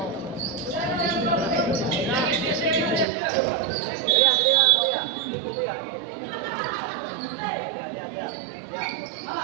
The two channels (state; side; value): drops out; left; at 3.1 s